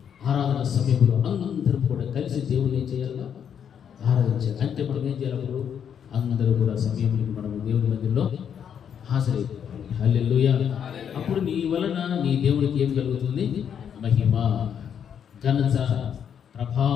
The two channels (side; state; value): right; quieter; 8.2 dB